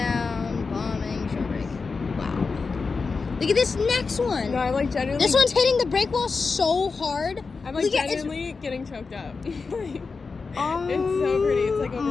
Bombing. Shore break. Wow. Look at this next one. No, I'm like genuinely. This one's hitting the brake wall so hard. I'm like Look at- genuinely getting choked up. Oh It's so pretty. It's like overwhelming.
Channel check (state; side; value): quieter; right; 4.6 dB